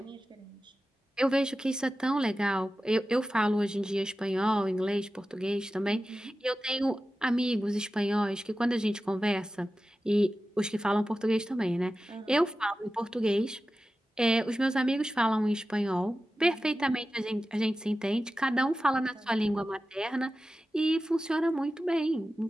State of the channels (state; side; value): normal; both; correlation 0.94